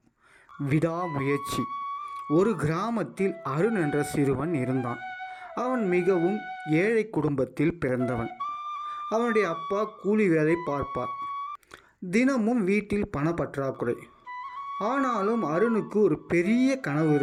விடாமுயற்சி. ஒரு கிராமத்தில் அருண் என்ற சிறுவன் இருந்தான். அவன் மிகவும் ஏழை குடும்பத்தில் பிறந்தவன். அவனுடைய அப்பா கூலி வேலை பார்ப்பார். தினமும் வீட்டில் பணப்பற்றாக்குறை. ஆனாலும் அருணுக்கு ஒரு பெரிய கனவு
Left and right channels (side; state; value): both; identical; correlation 1.00